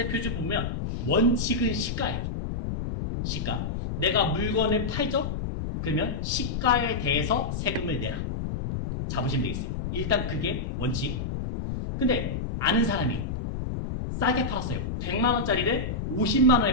표준 보면 원칙은 시가예요. 시가. 내가 물건을 팔죠? 그러면 시가에 대해서 세금을 내라. 잡으시면 되겠어요. 일단 그게 원칙. 근데 아는 사람이 싸게 팔았어요. 100만원짜리를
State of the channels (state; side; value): noise; left; rumble, 2 dB below the sound